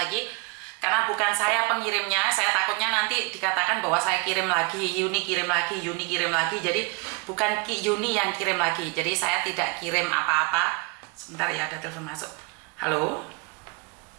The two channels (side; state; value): left; quieter; 29.4 dB